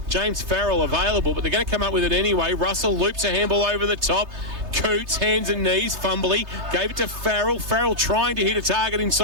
James Farrell available, but they're going to come up with it anyway. Russell loops a handball over the top. Coots, hands and knees, fumbly. Gave it to Farrell. Farrell trying to hit a target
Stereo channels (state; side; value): late; left; 3.3 ms